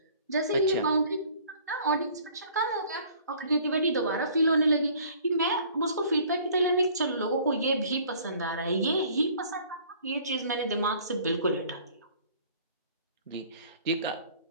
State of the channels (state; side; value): inverted; both; correlation -0.53